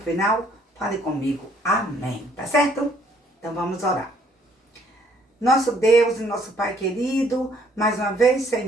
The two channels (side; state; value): both; normal; correlation 0.64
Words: fale comigo. Amém. Tá certo? Então vamos orar. Nosso Deus e nosso Pai querido, mais uma vez,